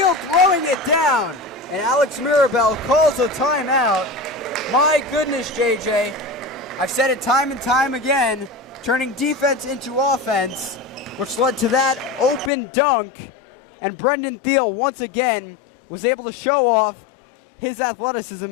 throwing it down. And Alex Mirabel calls a timeout. My goodness, JJ. I've said it time and time again, turning defense into offense, which led to that open dunk. And Brendan Thiel once again was able to show off his athleticism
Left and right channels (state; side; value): drops out; right; at 12.5 s